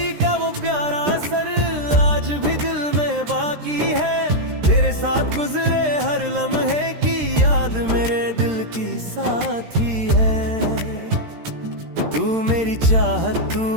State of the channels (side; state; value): left; late; 13 ms